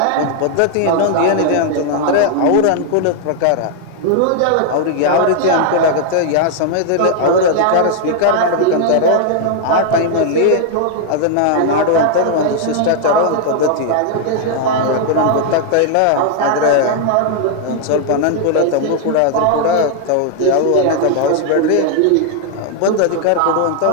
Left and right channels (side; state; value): both; different; correlation 0.00